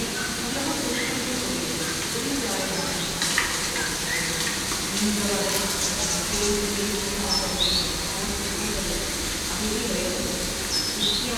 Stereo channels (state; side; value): identical; both; correlation 1.00